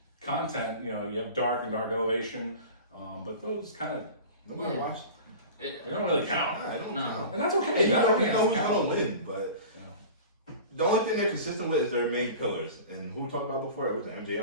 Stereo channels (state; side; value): inverted; both; correlation -0.37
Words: content. You have Dark and Dark Elevation, but those kind of nobody watched. They don't really count. I don't know. And that's okay. You know who's gonna win, but the only thing they're consistent with is their main pillars. And who we talked about before? It was